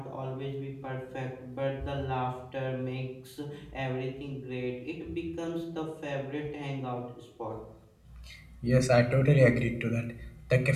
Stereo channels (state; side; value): identical; both; correlation 1.00